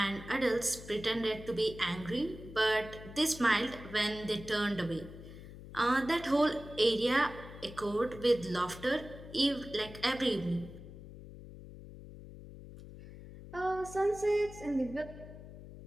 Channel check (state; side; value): noise; left; hum, 15 dB below the sound